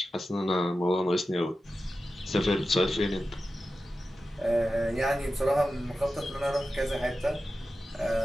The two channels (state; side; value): normal; both; correlation 0.93